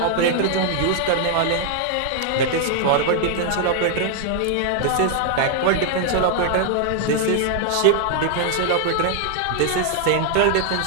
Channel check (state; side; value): different; both; correlation 0.00